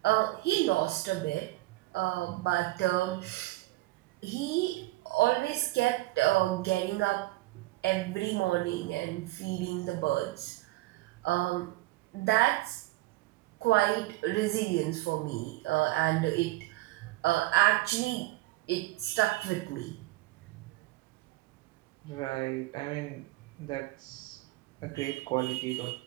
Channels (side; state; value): left; quieter; 19.1 dB